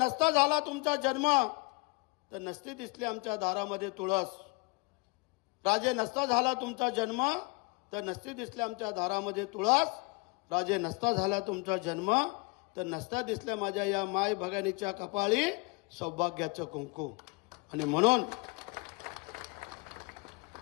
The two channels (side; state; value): right; quieter; 27.6 dB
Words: झाला तुमचा जन्म तर नसते दिसले आमच्या दारामध्ये तुळस। राजे नसता झाला तुमचा जन्म तर नसते दिसले आमच्या दारामध्ये तुळस। राजे नसता झाला तुमचा जन्म तर नसता दिसल्या माझ्या या माय भगिनीच्या कपाळी सौभाग्याचं कुंकू। आणि म्हणून